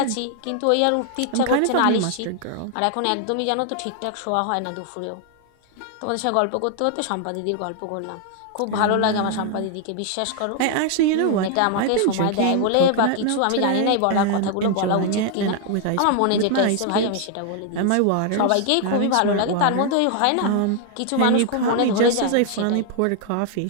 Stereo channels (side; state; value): both; different; correlation 0.00